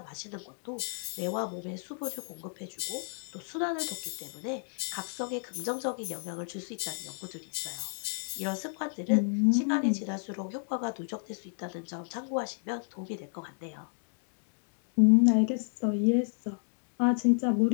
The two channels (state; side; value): silent; right; 57 dB below the other